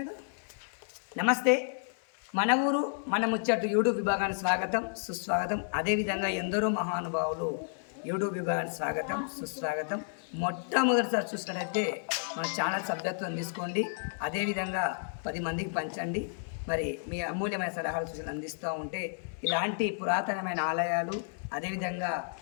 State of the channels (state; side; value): silent; right; 57 dB below the other